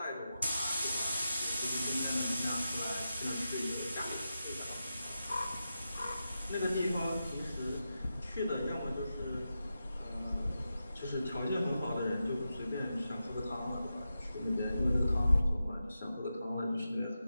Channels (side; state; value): both; inverted; correlation -0.90